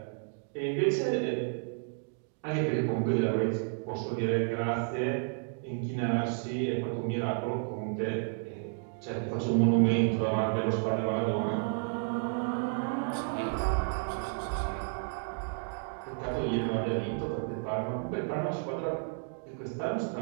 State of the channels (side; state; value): left; silent; 57 dB below the other